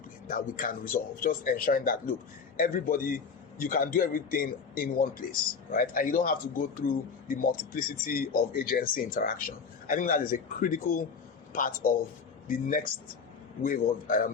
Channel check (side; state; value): right; quieter; 5.6 dB